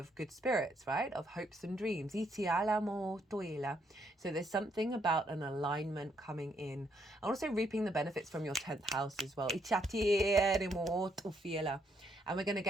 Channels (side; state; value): both; normal; correlation 0.74